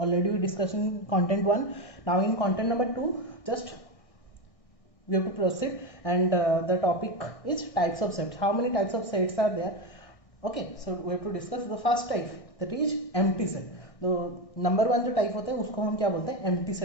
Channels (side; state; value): right; late; 1.6 ms